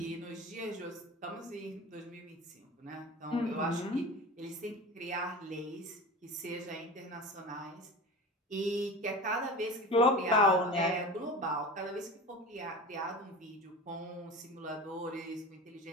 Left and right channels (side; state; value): both; normal; correlation 0.32